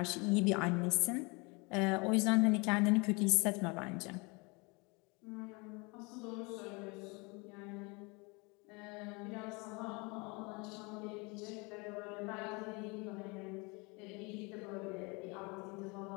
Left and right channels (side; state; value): right; quieter; 28.3 dB